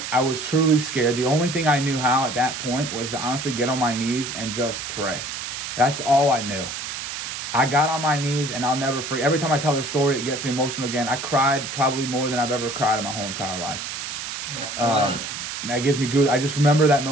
truly scared. The only thing I knew how at that point was to honestly get on my knees and just pray. That's all I knew. I got on my knees, and I'll never forget. Every time I tell this story, it gets me emotional again. I cried probably more than I've ever cried in my whole entire life. That gives me good. I just remember that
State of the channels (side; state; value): right; noise; hiss, 6 dB below the sound